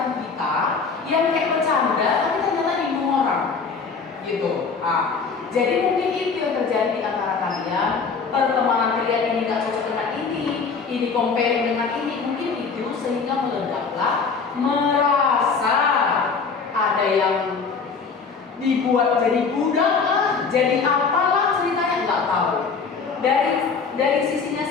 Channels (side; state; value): right; quieter; 5.1 dB